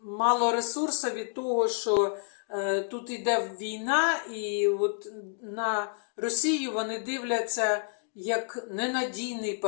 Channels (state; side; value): silent; right; digital silence